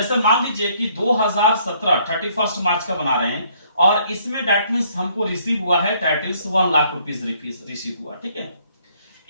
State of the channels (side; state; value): both; inverted; correlation -0.65